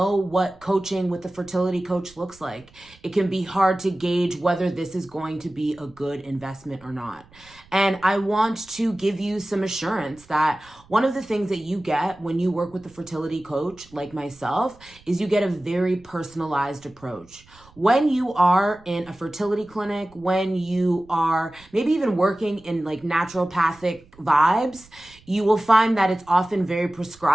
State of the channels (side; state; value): right; noise; rumble, 27 dB below the sound